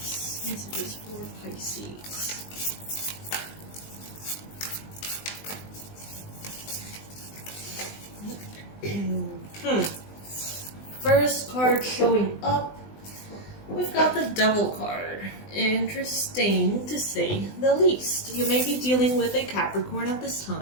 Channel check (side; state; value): right; late; 20 ms